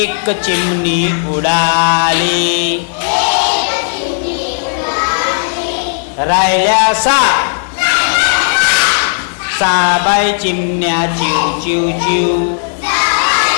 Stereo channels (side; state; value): right; silent; digital silence